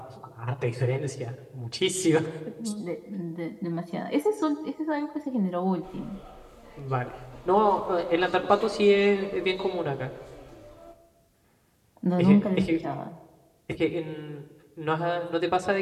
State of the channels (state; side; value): identical; both; correlation 1.00